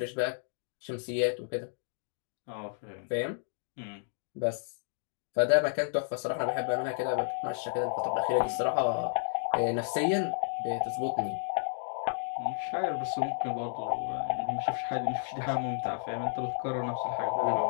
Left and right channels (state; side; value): silent; right; digital silence